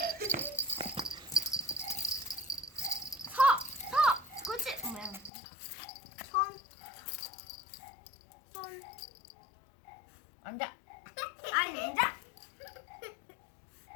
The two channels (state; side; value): drops out; right; at 5.3 s